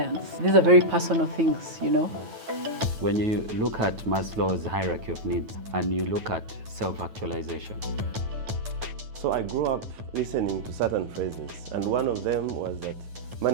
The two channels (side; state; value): left; late; 9.2 ms